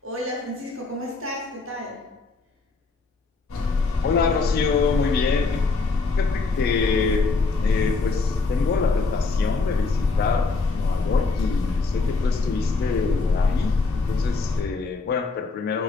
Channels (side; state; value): right; quieter; 4.0 dB